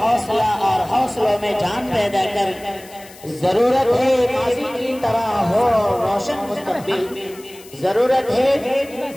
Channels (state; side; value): noise; left; hiss, 21 dB below the sound